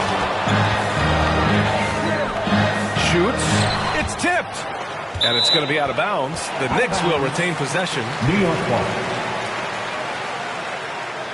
Shoots. It's tipped. And it's going to be out of bounds. The Knicks will retain possession. New York ball.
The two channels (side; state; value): both; identical; correlation 1.00